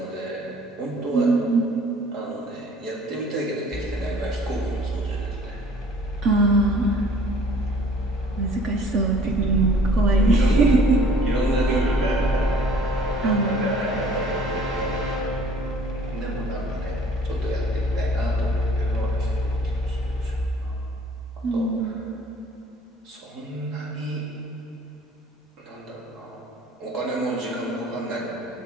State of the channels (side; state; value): both; normal; correlation 0.53